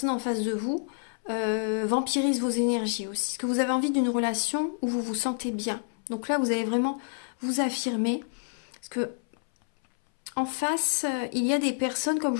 en face de vous vampirise vos énergies aussi. Parce que vous avez envie d'une relation où vous vous sentez bien. Donc là, vous allez vraiment vous affirmer. Parce que en face, il y a des personnes, comme je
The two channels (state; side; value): silent; right; 59 dB below the other